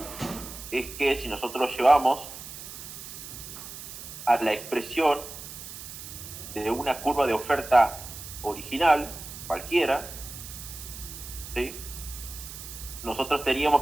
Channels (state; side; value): noise; right; hiss, 12 dB below the sound